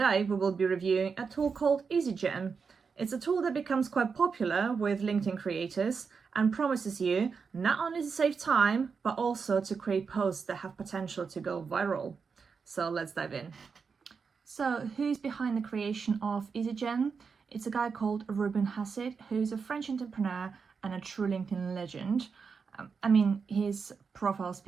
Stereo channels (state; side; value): quieter; left; 5.5 dB